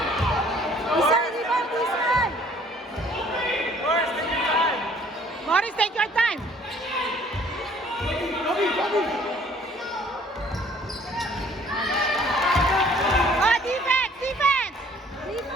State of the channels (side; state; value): both; normal; correlation 0.57